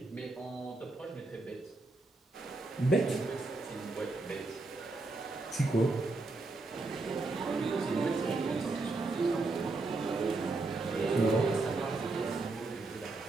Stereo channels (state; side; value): quieter; left; 3.3 dB